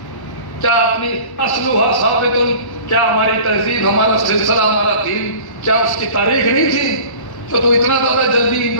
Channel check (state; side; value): late; right; 1.1 ms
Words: क्या अपनी असलुहा साबितुल, क्या हमारी तहजीब, हमारा सिलसिला, हमारा दीन, क्या उसकी तारीख नहीं थी तो तू इतना ज्यादा जल्दी